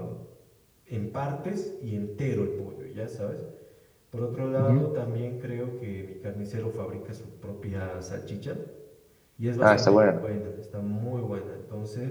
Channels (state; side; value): identical; both; correlation 1.00